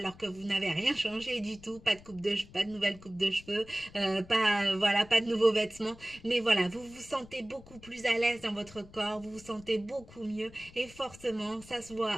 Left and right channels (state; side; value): noise; left; rumble, 21 dB below the sound